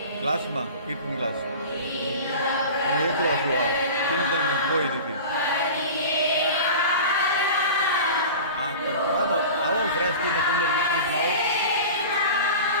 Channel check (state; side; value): inverted; both; correlation -0.35